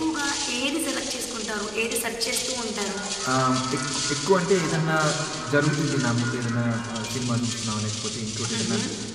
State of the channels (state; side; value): noise; right; rumble, 21 dB below the sound